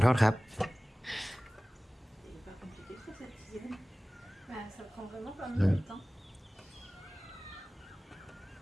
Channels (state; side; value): normal; both; correlation 0.98